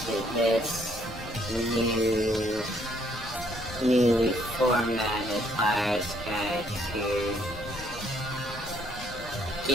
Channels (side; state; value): left; noise; rumble, 14 dB below the sound